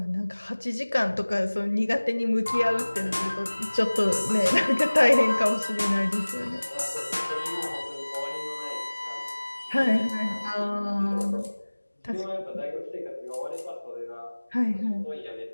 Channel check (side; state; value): both; inverted; correlation -1.00